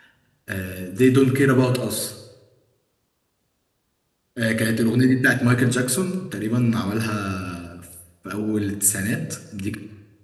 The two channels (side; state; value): both; identical; correlation 1.00